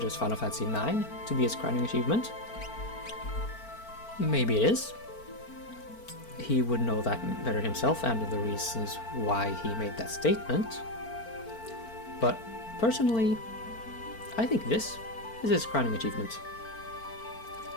Final Fantasy IX to be his crowning achievement. Maybe it is. He would know that better himself and the reasons why he made that statement. But personally, I think this is his crowning achievement.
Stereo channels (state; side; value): late; right; 4.4 ms